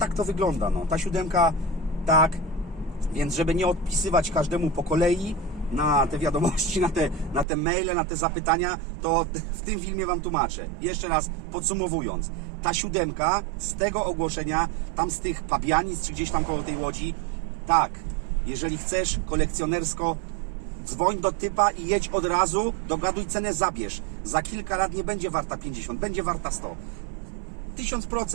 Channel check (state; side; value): drops out; left; at 7.5 s